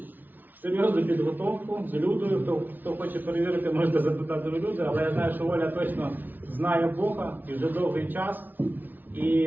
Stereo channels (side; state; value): left; late; 0.086 ms